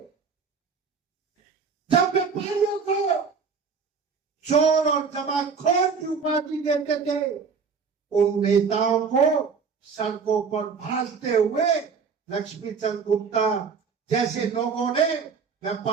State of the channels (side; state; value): left; quieter; 5.6 dB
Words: जब व्यापारियों को चोर और जमाखोर की उपाधि देते थे, उन नेताओं को सड़कों पर भाजते हुए लक्ष्मीचंद गुप्ता जैसे लोगों ने